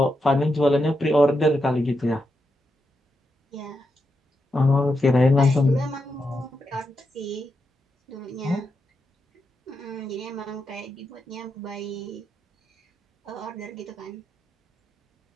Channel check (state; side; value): normal; both; correlation 0.85